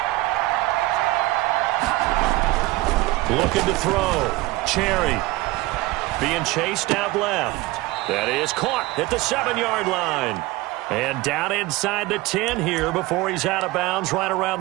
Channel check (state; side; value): quieter; left; 19.6 dB